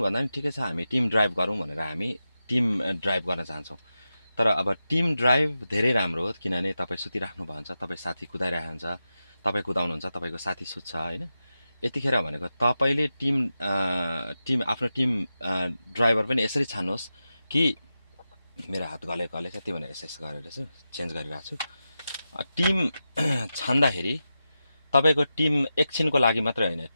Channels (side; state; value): both; inverted; correlation -0.91